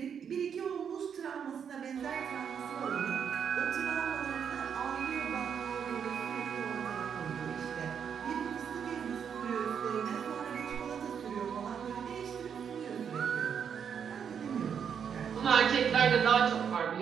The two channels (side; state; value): left; quieter; 7.5 dB